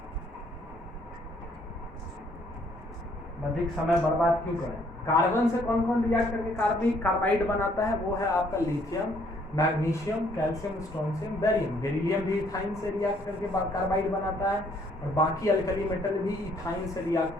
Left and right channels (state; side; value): normal; both; correlation 0.65